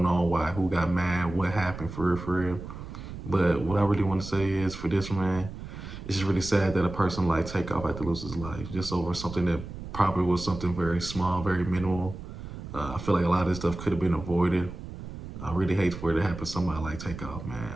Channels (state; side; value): noise; right; rumble, 11 dB below the sound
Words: on, why, who got mad, what happened for real. But what I really want to say is, for this man, it's just really sad that a person like Takeoff had to lose his life just over something that probably was something very small, very minimal. I feel like a lot of this stuff could have been avoided. I really hate for it to happen to somebody like Takeoff,